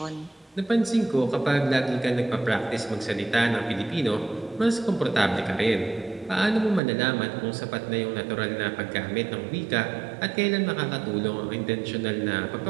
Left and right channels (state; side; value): drops out; left; at 6.8 s